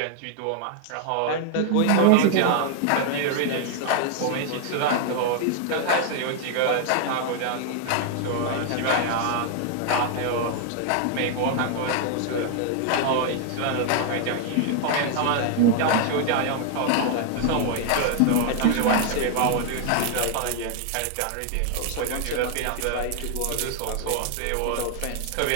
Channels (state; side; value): different; both; correlation 0.00